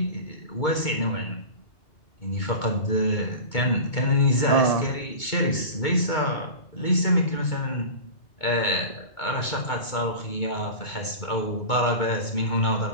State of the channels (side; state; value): right; late; 2.2 ms